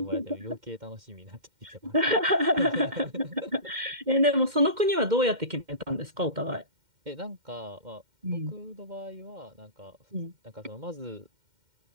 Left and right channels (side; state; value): left; late; 2.1 ms